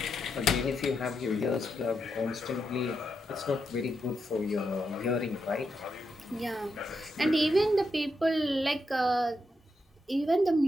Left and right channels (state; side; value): normal; both; correlation 0.83